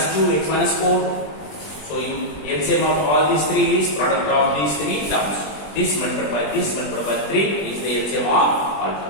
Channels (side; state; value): right; late; 20 ms